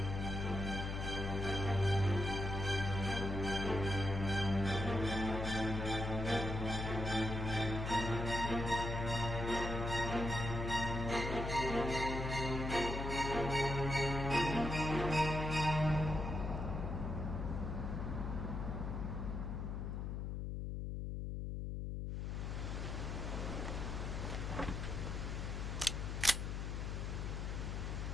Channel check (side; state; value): left; noise; hum, 3 dB below the sound